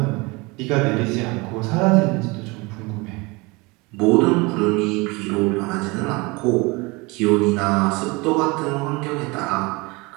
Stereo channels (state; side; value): quieter; left; 25.5 dB